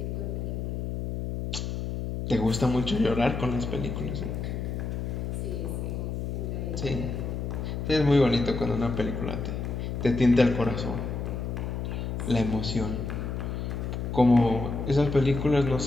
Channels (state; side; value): noise; left; hum, 3 dB below the sound